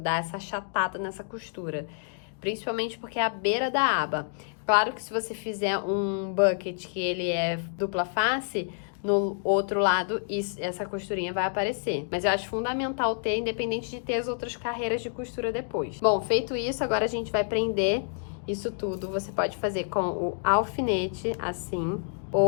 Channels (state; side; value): silent; right; digital silence